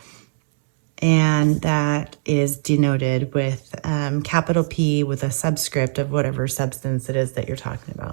and that is denoted with capital P with a subscript of whatever substance it is that you're talking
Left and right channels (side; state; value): left; silent; 65 dB below the other